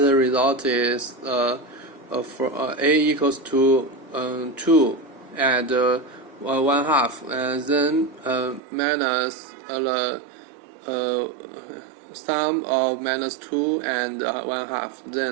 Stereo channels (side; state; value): left; drops out; at 8.6 s